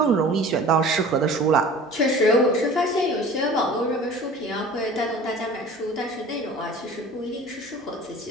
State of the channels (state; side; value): normal; both; correlation 0.42